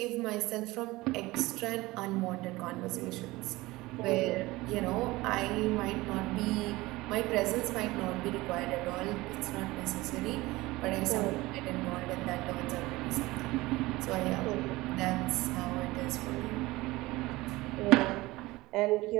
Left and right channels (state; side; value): quieter; left; 20.0 dB